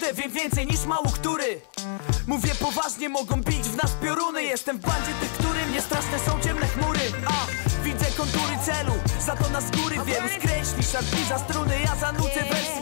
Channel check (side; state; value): right; silent; 57 dB below the other